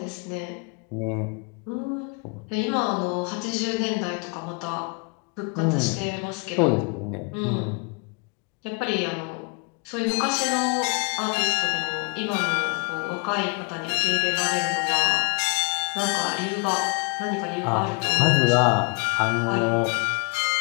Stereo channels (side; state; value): right; quieter; 31.8 dB